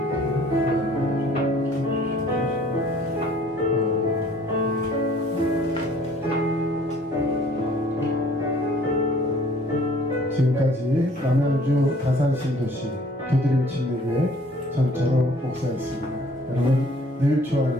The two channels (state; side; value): normal; both; correlation 0.55